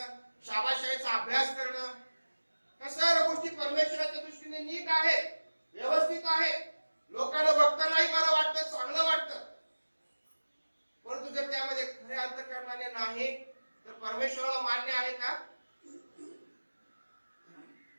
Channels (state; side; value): inverted; both; correlation -1.00